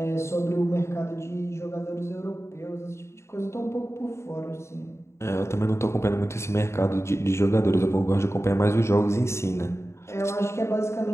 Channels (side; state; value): right; late; 0.13 ms